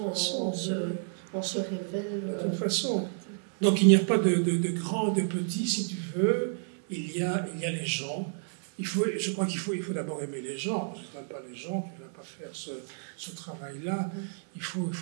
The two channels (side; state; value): left; silent; 57 dB below the other